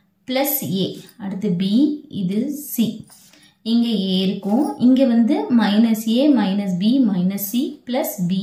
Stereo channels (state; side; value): identical; both; correlation 1.00